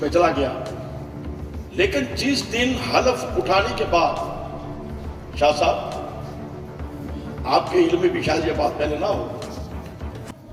میں چلا گیا۔ لیکن جس دن حلف اٹھانے کے بعد، شاہ صاحب آپ کے علم میں بھی شاید یہ بات پہلے نہ ہو،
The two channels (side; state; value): both; identical; correlation 1.00